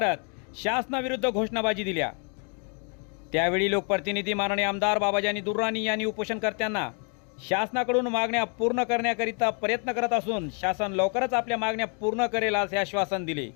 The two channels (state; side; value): quieter; right; 39.1 dB